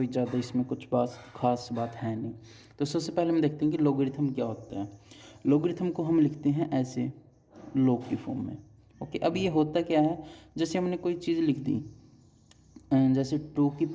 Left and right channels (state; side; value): identical; both; correlation 1.00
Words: ज़्यादा इसमें कुछ खास बात है नहीं। तो सबसे पहले हम देखते हैं कि लॉगरिथम क्या होता है। लॉगरिथम को हम लिखते हैं ऐसे, लॉग की फॉर्म में। ओके, अब ये होता क्या है, जैसे हमने कोई चीज़ लिख दी, जैसे 2 की